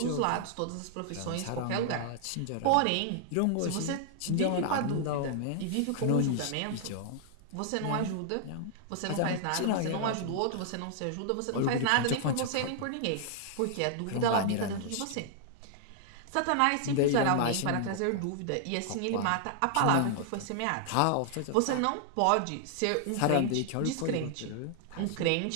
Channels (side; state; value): both; different; correlation -0.01